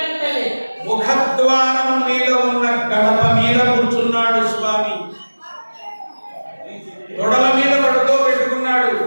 ముఖద్వారం మీద ఉన్న గడప మీద కూర్చున్నాడు స్వామి. తొడల మీద పడుకోబెట్టుకున్నాడు.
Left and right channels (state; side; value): inverted; both; correlation -1.00